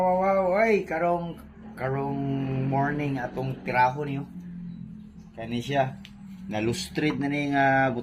ay, karong morning atong tiraho niyo. Kani siya. Nalustrid na ni nga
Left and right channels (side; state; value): both; identical; correlation 1.00